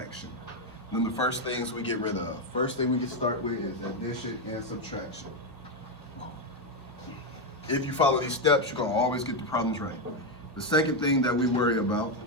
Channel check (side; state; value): both; normal; correlation 0.06